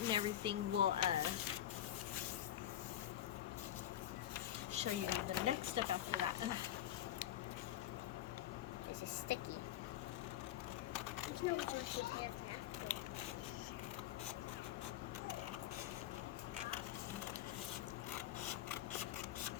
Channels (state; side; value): quieter; right; 12.2 dB